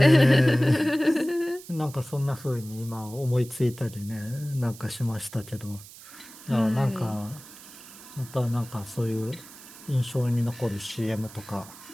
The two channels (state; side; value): noise; right; hiss, 18 dB below the sound